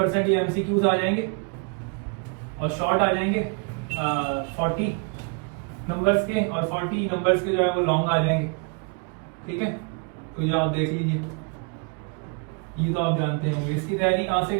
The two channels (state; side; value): quieter; left; 35.9 dB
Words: ये MCQs आ जाएंगे और शॉर्ट आ जाएंगे 40 नंबर्स के, और 40 नंबर्स के जो है वो लॉन्ग आ जाएंगे। ठीक है, तो ये आप देख लीजिए, ये तो आप जानते होंगे। इसकी तैयारी कहाँ से